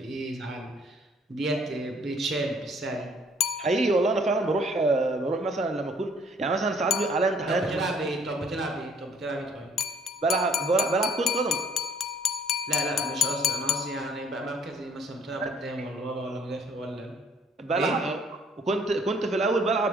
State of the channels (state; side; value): normal; both; correlation 0.60